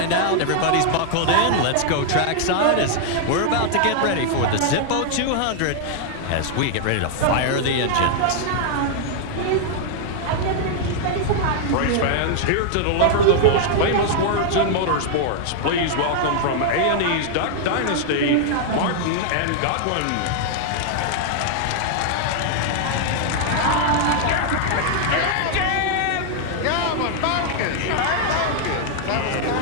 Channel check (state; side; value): different; both; correlation 0.00